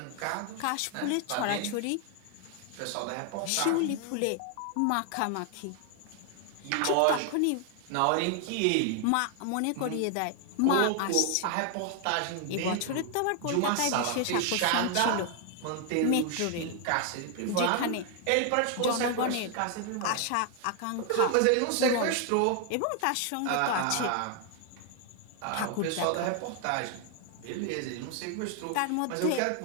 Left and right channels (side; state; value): both; different; correlation 0.00